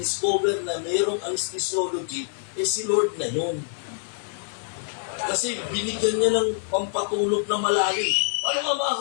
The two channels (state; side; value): silent; right; digital silence